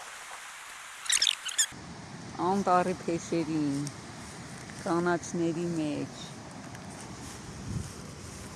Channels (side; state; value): both; identical; correlation 1.00